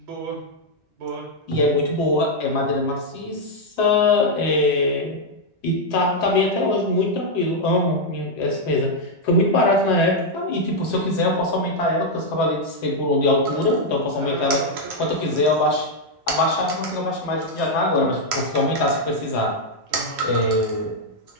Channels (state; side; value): normal; both; correlation -0.01